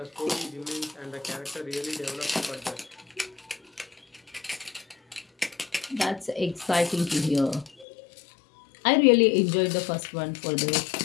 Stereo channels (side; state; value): right; drops out; at 7.9 s